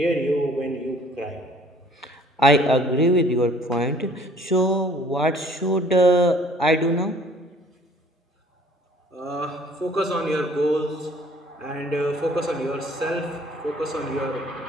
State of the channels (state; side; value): normal; both; correlation 0.55